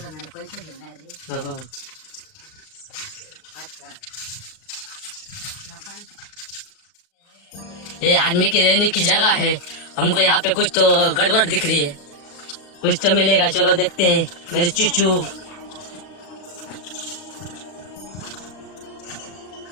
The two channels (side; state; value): right; late; 38 ms